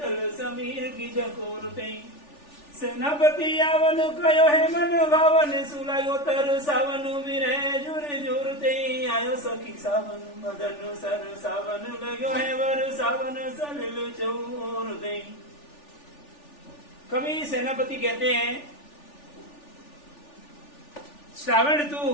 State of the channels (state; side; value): late; right; 3.4 ms